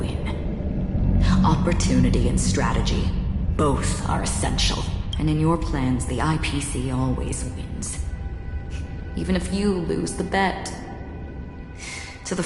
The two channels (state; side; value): identical; both; correlation 1.00